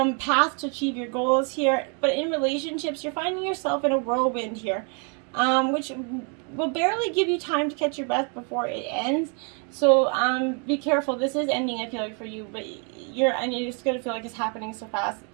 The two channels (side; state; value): left; quieter; 38.1 dB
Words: to achieve your goals here. But in relationships, you're finding yourself in a whirlwind here, which will barely give you time to catch your breath before it ends. So be careful. This is ending, I feel like, for you, but you're just going to feel like it's happening so fast